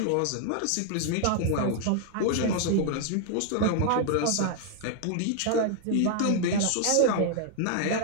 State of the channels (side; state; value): both; different; correlation 0.00